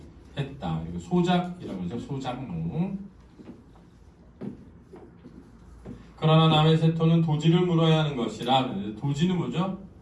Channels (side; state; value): both; identical; correlation 1.00